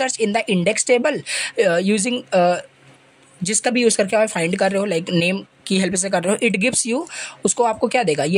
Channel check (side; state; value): both; identical; correlation 1.00